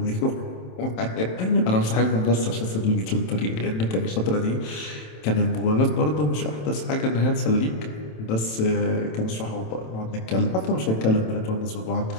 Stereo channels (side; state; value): right; late; 27 ms